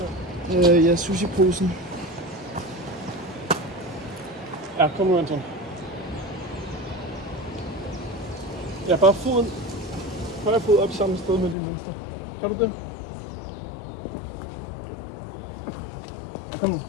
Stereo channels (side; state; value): right; drops out; at 11.6 s